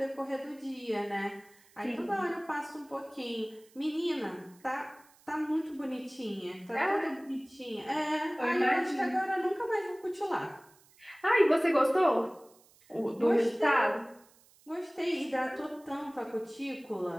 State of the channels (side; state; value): right; noise; hiss, 29 dB below the sound